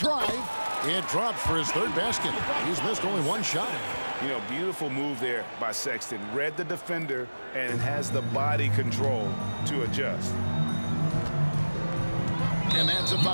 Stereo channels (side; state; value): both; inverted; correlation -1.00